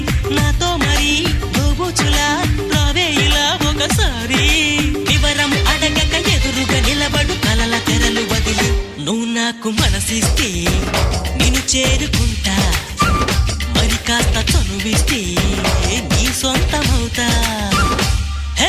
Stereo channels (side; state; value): both; identical; correlation 1.00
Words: నాతో మరి దోబుచులా రావే ఇలా ఒకసారి. వివరం అడగక ఎదురుగా నిలబడు కలల తెరలు వదిలి, నువ్వు నాకు మనసిస్తే నిన్ను చేరుకుంటా, మరి కాస్త చనువిస్తే నీ సొంతమవుతా.